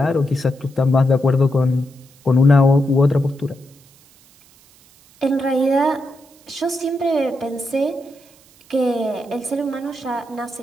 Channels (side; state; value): right; noise; hiss, 28 dB below the sound